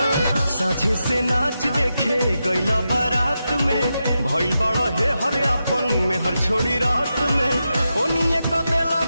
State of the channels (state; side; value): inverted; both; correlation -0.88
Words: साझे से नाच देखे गईला बारात में भइल बड़ा हे हर अपन में हर छोड़ी रात में ओनिए क देला